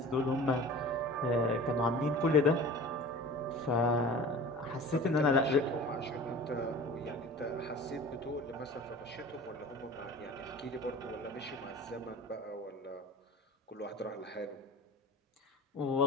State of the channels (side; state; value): both; normal; correlation 0.39